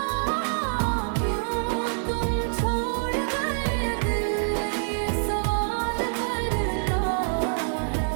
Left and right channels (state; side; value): silent; left; 58 dB below the other